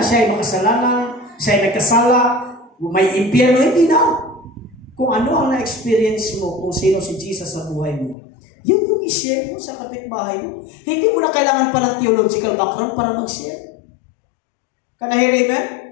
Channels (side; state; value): right; drops out; at 8.2 s